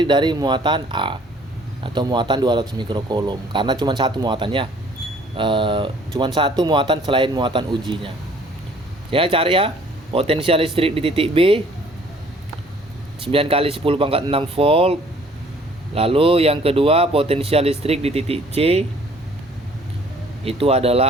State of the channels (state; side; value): normal; both; correlation 0.56